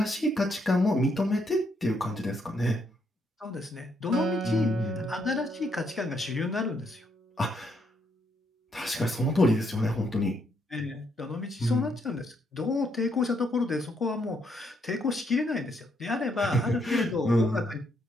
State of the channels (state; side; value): normal; both; correlation 0.75